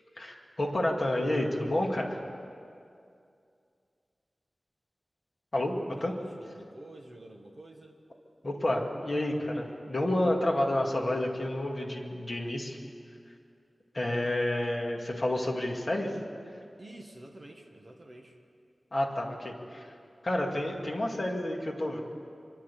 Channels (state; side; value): normal; both; correlation 0.96